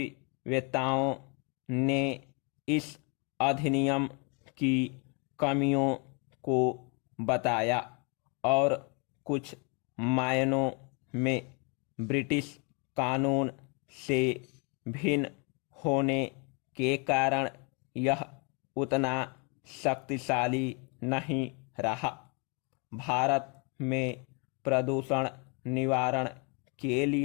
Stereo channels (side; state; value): right; quieter; 33.8 dB